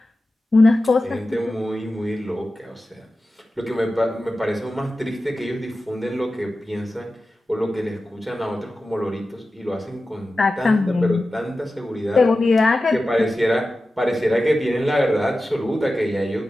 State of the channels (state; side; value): normal; both; correlation 0.94